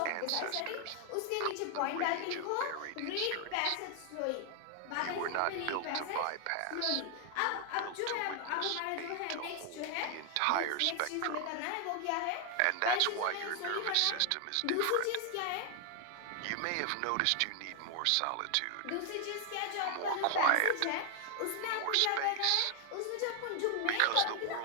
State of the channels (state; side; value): different; both; correlation 0.00